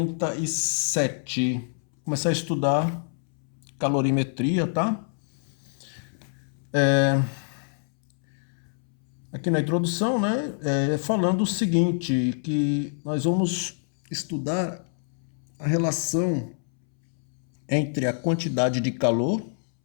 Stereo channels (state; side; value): silent; right; 61 dB below the other